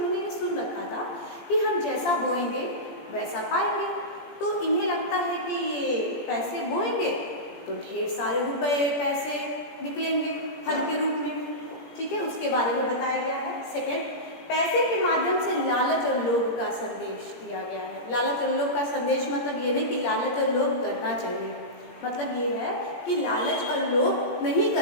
ये सुन रखा था कि हम जैसा बोएंगे वैसा पाएंगे। तो इन्हें लगता है कि ये पैसे बोएंगे तो ढेर सारे रुपए, पैसे निकलेंगे फल के रूप में। ठीक है, उसके बारे में बताया गया है। सेकंड, पैसे के माध्यम से लालच और लोभ का संदेश दिया गया है। लालच और लोभ का संदेश मतलब ये नहीं कि लालच और लोभ करना चाहिए, मतलब ये है कि लालच और लोभ नहीं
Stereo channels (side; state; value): right; late; 17 ms